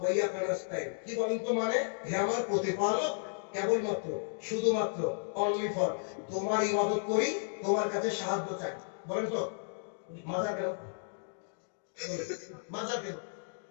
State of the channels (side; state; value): right; silent; digital silence